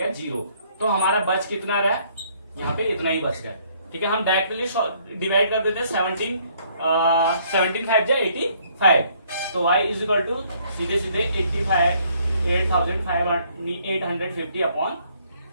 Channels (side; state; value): both; inverted; correlation -0.65